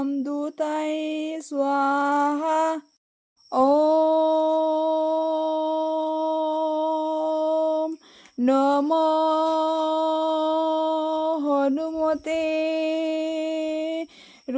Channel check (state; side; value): identical; both; correlation 1.00